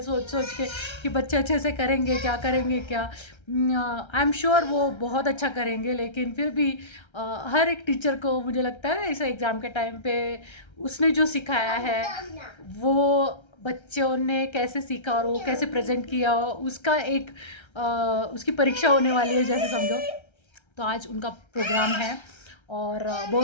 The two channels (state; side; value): late; right; 1.3 ms